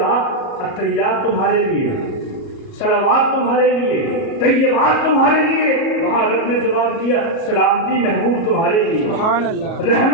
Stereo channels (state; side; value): late; right; 37 ms